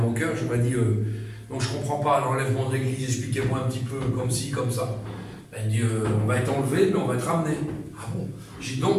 cœur, j'aurais dit donc je ne comprends pas l'enlèvement de l'église, expliquez-moi un petit peu comme ci, comme ça. Elle dit on va être enlevé, mais on va être ramené. Ah bon? J'ai dit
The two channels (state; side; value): identical; both; correlation 1.00